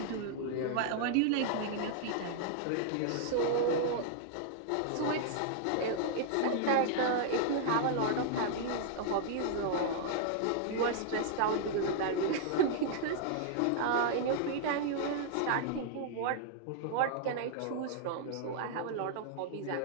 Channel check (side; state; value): both; different; correlation -0.01